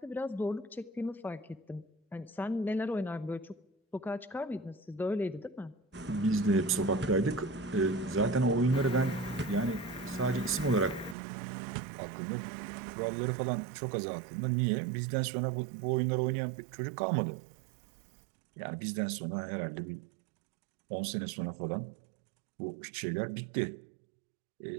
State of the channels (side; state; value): left; drops out; at 11.2 s